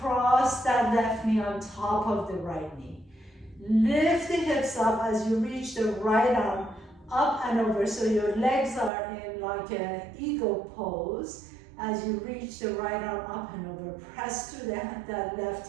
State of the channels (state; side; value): drops out; left; at 8.9 s